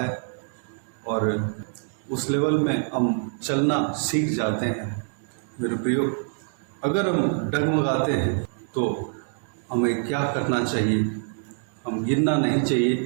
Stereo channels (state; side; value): silent; left; 60 dB below the other